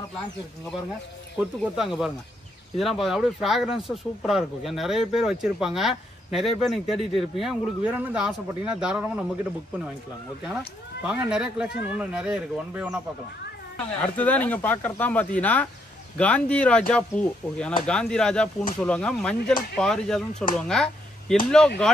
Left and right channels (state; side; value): normal; both; correlation 0.74